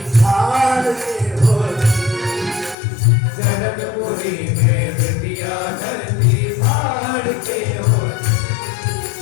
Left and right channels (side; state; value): right; drops out; at 2.8 s